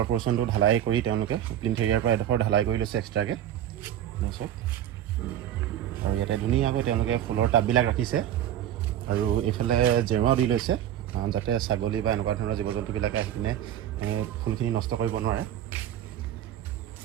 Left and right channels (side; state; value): left; quieter; 11.3 dB